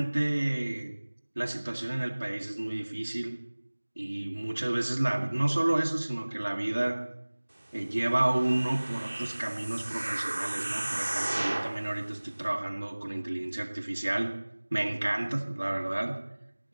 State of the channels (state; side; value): inverted; both; correlation -1.00